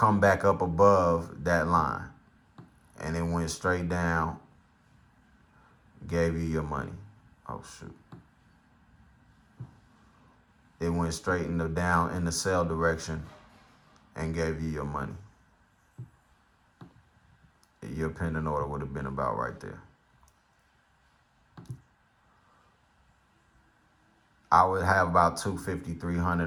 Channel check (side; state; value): both; identical; correlation 1.00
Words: back up above that line. And it went straight down, gave you your money. Oh, shoot. It went straight in the sell direction and gave you your money. Your pending order would have been about right there. I would have about $250,